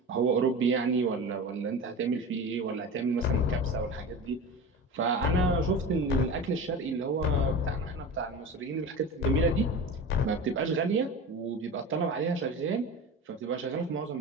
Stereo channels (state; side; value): normal; both; correlation 0.30